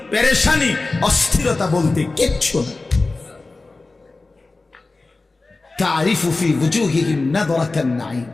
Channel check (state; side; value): quieter; right; 3.4 dB